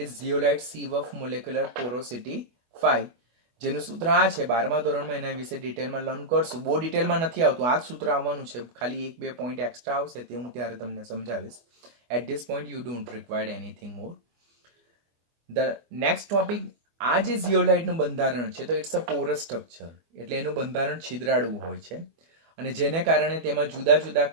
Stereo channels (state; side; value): late; left; 24 ms